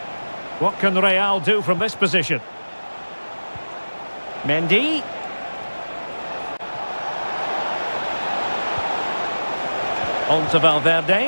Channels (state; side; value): inverted; both; correlation -1.00